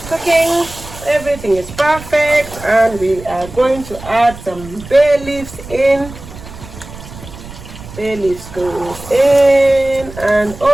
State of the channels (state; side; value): noise; right; rumble, 15 dB below the sound